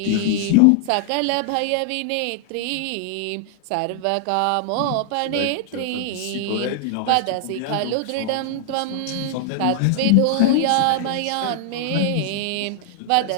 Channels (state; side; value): different; both; correlation 0.00